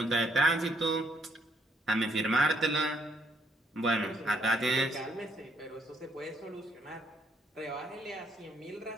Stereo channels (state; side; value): normal; both; correlation 0.70